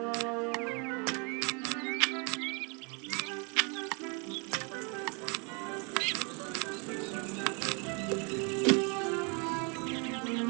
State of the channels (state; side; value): quieter; left; 33.7 dB